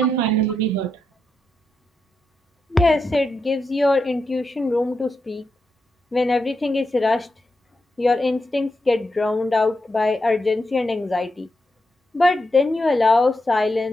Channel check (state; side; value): normal; both; correlation 0.86